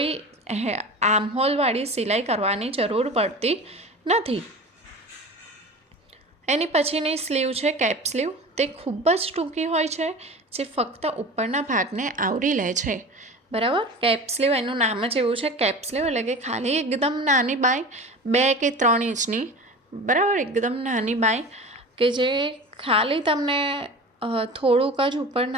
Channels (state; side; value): normal; both; correlation 0.35